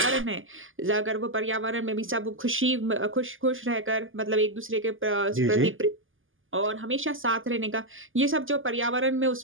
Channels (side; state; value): left; late; 0.58 ms